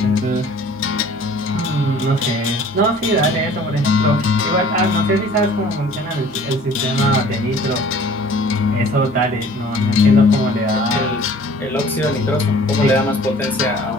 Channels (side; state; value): both; normal; correlation 0.50